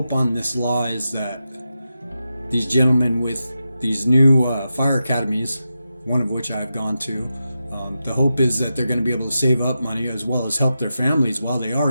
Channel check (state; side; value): inverted; both; correlation -0.89